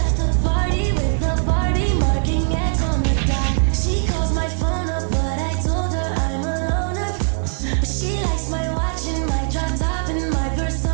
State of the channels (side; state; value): left; silent; digital silence